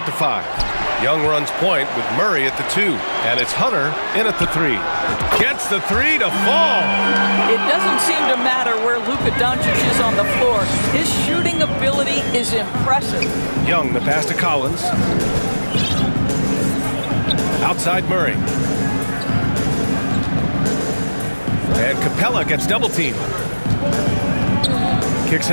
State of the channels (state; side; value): inverted; both; correlation -1.00